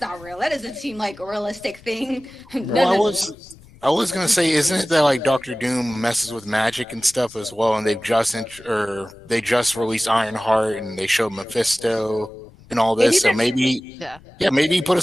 not real. That doesn't seem like a realistic thing. Well, I was gonna say, isn't it that like Doctor Doom messes with magic and stuff as well, and they just released Ironheart and they showed Mephisto and all this, so maybe he put a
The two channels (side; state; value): left; noise; rumble, 25 dB below the sound